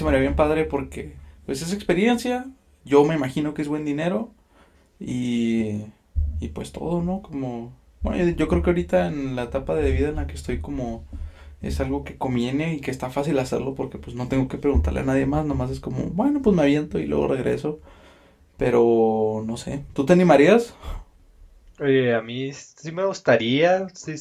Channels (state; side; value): identical; both; correlation 1.00